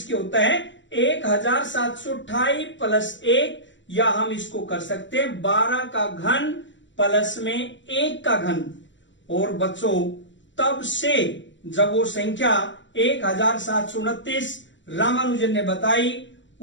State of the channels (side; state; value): right; late; 0.54 ms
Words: होता है? 1728 प्लस 1, या हम इसको कर सकते हैं 12 का घन प्लस में 1 का घन। और बच्चों तब से जब वो संख्या 1729 रामानुजन ने बताई,